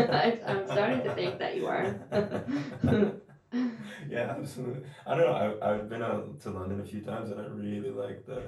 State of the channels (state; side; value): identical; both; correlation 1.00